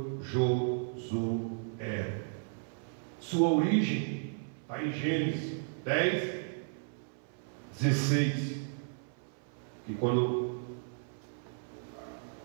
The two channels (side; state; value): left; silent; 55 dB below the other